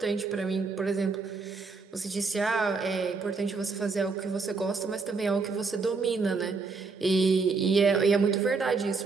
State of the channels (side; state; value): left; quieter; 4.5 dB